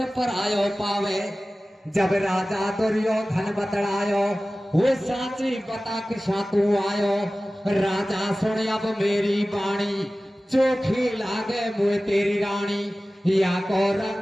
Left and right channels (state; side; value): normal; both; correlation 0.97